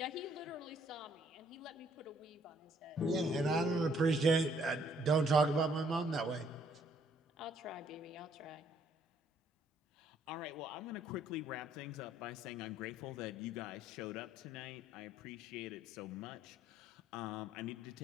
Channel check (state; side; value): normal; both; correlation 0.66